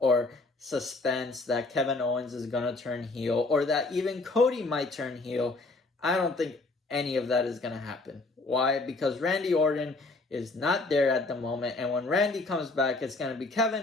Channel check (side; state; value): right; quieter; 3.3 dB